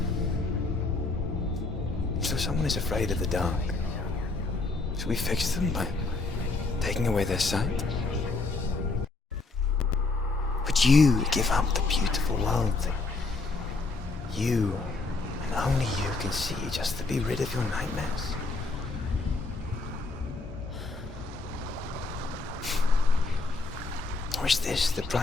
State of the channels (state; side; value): quieter; right; 3.7 dB